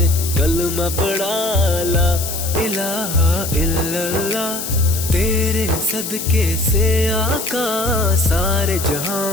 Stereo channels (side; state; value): left; noise; hiss, 6 dB below the sound